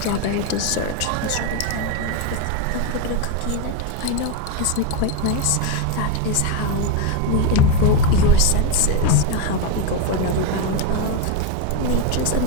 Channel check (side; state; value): both; different; correlation 0.02